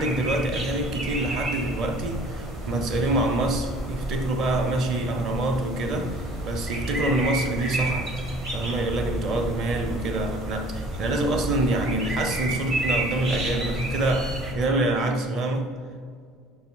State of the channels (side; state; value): both; normal; correlation 0.51